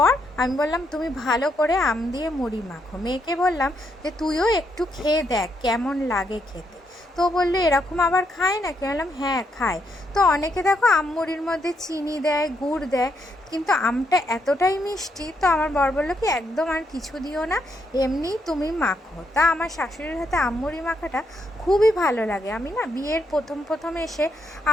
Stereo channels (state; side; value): normal; both; correlation 0.77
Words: আমি বললাম তুমি ভালো করে আম দিয়ে মুড়ি মাখো। মেয়েকে বললাম যে তুইও একটু খেয়ে দেখ কেমন লাগে খেতে। তো বললো এরকম আবার খায় না? কে বললাম হ্যাঁ খায়। তো অনেকে দেখো আম মুড়ির মধ্যে চিনি দেয়, গুড় দেয়, কিন্তু আমটা এতটাই মিষ্টি, তো আমার বর বললো কি একদম আর কিছু দিও না, এমনিই তুমি মাখো। তা আমার শাশুড়ির হাতে আমমুড়ি মাখাটা খুবই ভালো লাগে। আমি না বিয়ের প্রথম এসে,